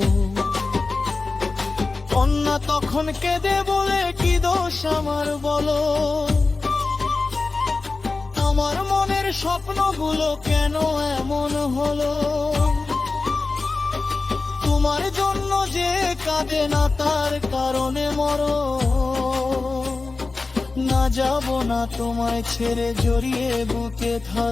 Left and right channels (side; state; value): right; quieter; 3.8 dB